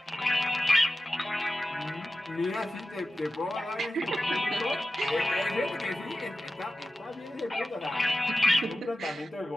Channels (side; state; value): both; normal; correlation 0.94